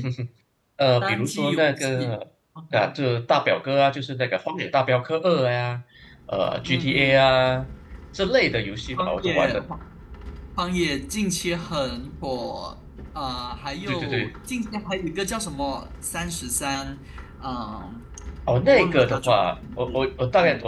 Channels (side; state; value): both; identical; correlation 1.00